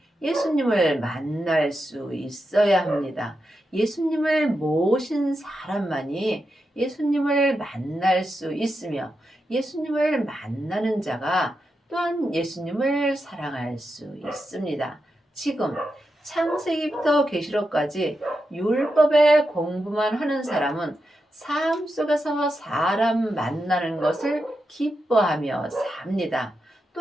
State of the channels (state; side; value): normal; both; correlation 0.87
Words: 예수님을 만날 수 있어야 합니다. 예수님을 모신 사람만이 예수님을 만날 수 있으며 예수님을 만나는 자가 또한 예수님을 사랑할 수 있습니다. 지금 창세기부터 계시록까지 율법의 공부만 하는 사람은 삶 속에서 사람 만나는 것을 기뻐하며 삽니다.